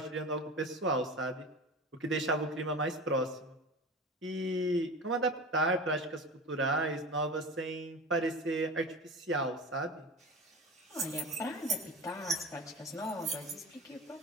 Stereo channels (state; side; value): normal; both; correlation 0.31